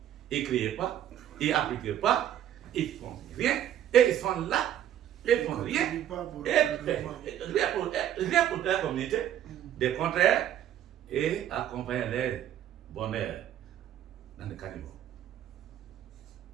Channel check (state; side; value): quieter; left; 11.1 dB